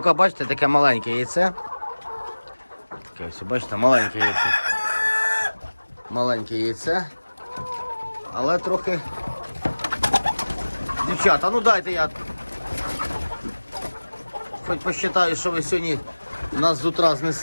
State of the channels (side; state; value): both; inverted; correlation -1.00